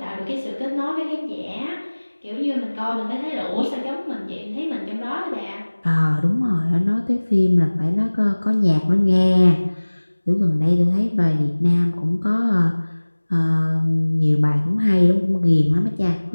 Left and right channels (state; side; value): inverted; both; correlation -1.00